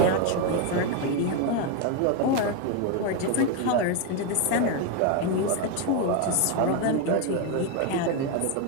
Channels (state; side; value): different; both; correlation 0.01